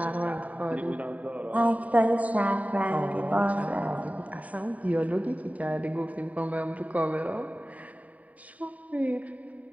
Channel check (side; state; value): left; late; 0.070 ms